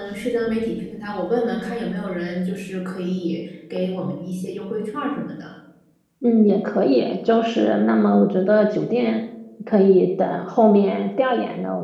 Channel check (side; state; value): both; identical; correlation 1.00